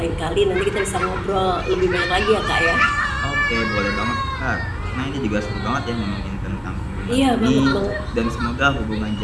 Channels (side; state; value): both; identical; correlation 1.00